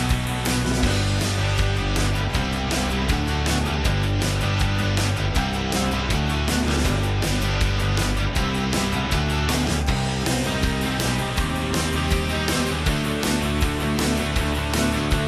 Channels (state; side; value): identical; both; correlation 1.00